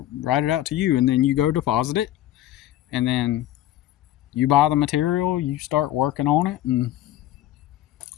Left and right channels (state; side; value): quieter; right; 13.7 dB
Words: write it out to you, and then you go deposit it, and then you buy the material, you start working on it, and